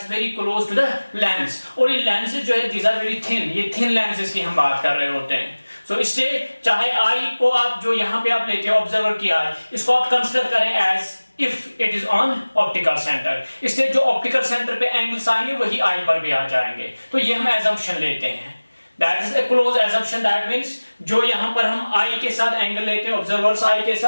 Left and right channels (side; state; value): both; inverted; correlation -1.00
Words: very close to the lens, और ये लेंसेज जो है दीज आर वेरी थिन, ये थिन लेंसेज की हम बात कर रहे होते हैं. सो इससे चाहे आई को आप जो यहां पे आप लेते हैं ऑब्जर्वर की आई, इसको आप कंसिडर करें as if it is on optical centre. इसलिए जो ऑप्टिकल सेंटर पे एंगल्स आएंगे वही आई पर भी आ जाएंगे. तो ये हम एजम्पशन लेते हैं, that is a close assumption. That means जो यहां पर हम आई के साथ एंगल लेते हैं ऑब्जर्वर्स आई के